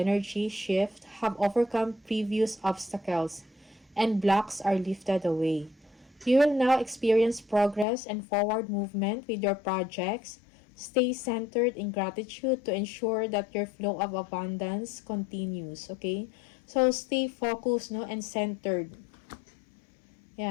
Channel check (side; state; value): right; drops out; at 7.9 s